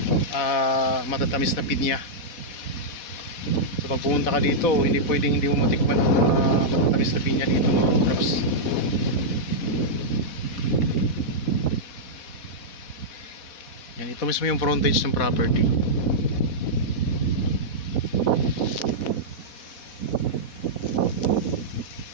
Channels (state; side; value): late; right; 4.1 ms